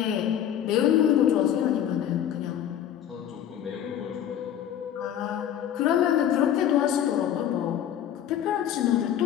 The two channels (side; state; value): right; quieter; 10.3 dB